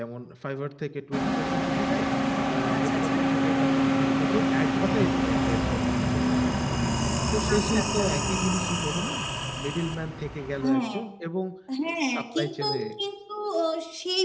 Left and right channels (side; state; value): both; identical; correlation 1.00